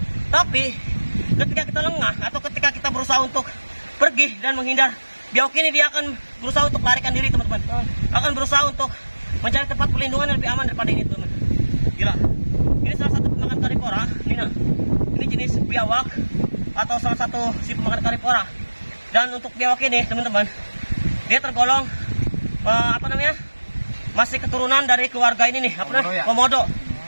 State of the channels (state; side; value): inverted; both; correlation -1.00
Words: Tapi ketika kita lengah atau ketika kita berusaha untuk pergi dan menghindar biawak ini, dia akan berusaha untuk melarikan diri teman-teman. Akan berusaha untuk mencari tempat perlindungan yang lebih aman daripada ini teman-teman. Gila. Ini salah satu pemakan karnivora. Ini jenis biawak atau salah satu si pemakan karnivora. Dan untuk biawak ini teman-teman, dia tergolong apa namanya, masih keturunan dari keluarga ini nih, apa namanya, komodo.